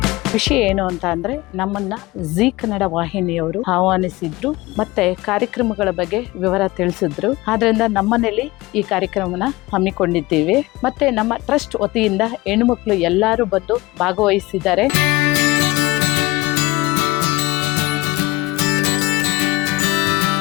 ವಿಷಯ ಏನು ಅಂತ ಅಂದ್ರೆ, ನಮ್ಮನ್ನ ಜೀ ಕನ್ನಡ ವಾಹಿನಿಯವರು ಆಹ್ವಾನಿಸಿದ್ರು ಮತ್ತೆ ಕಾರ್ಯಕ್ರಮಗಳ ಬಗ್ಗೆ ವಿವರ ತಿಳಿಸಿದ್ರು. ಆದ್ರಿಂದ ನಮ್ಮನೇಲಿ ಈ ಕಾರ್ಯಕ್ರಮನ ಹಮ್ಮಿಕೊಂಡಿದ್ದೀವಿ. ಮತ್ತೆ ನಮ್ಮ ಟ್ರಸ್ಟ್ ವತಿಯಿಂದ ಹೆಣ್ಣುಮಕ್ಳು ಎಲ್ಲರೂ ಬಂದು ಭಾಗವಹಿಸಿದ್ದಾರೆ.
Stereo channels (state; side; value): quieter; right; 20.4 dB